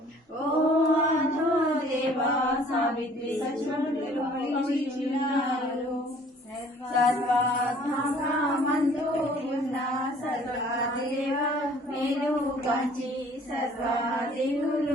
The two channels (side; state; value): both; normal; correlation 0.54